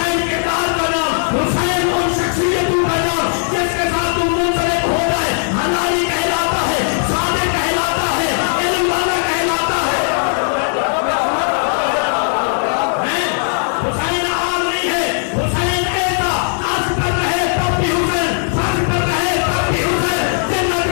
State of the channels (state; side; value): silent; right; 57 dB below the other